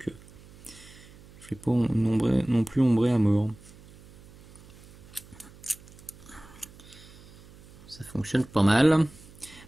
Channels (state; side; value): noise; right; hum, 22 dB below the sound